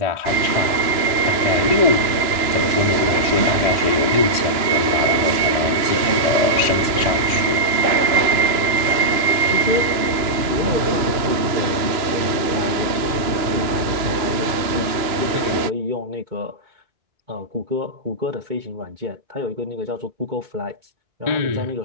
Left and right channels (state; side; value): late; left; 2.9 ms